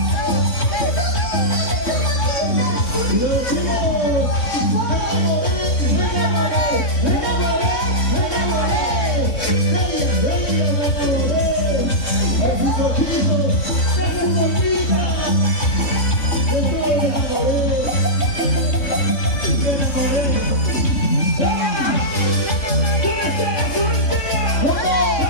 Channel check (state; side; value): late; right; 3.6 ms